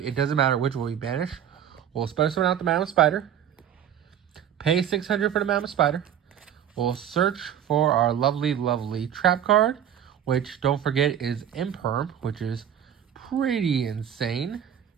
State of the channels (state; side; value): quieter; left; 9.6 dB